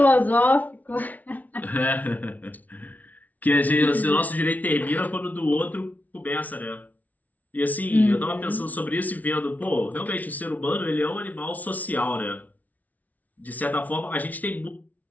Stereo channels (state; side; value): late; right; 0.074 ms